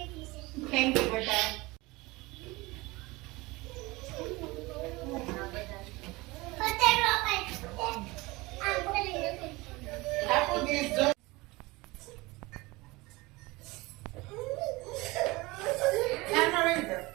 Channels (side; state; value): left; quieter; 22.4 dB